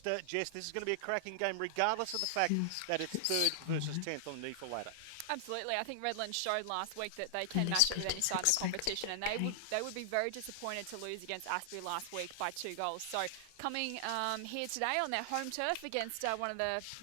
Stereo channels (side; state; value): both; different; correlation 0.00